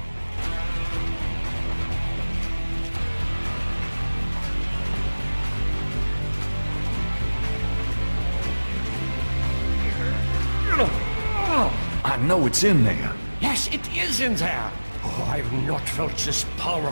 I know it's in there. Yes, it is in there. Oh, I've not felt this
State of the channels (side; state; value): both; inverted; correlation -1.00